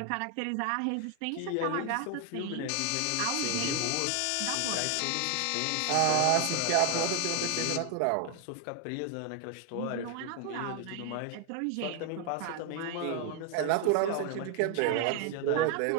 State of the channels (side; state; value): both; different; correlation 0.00